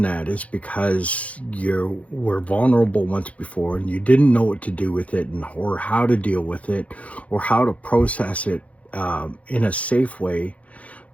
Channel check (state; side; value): late; right; 0.065 ms